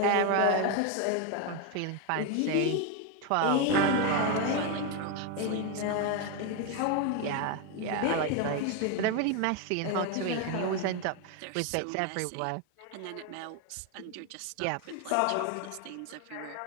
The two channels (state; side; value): different; both; correlation 0.02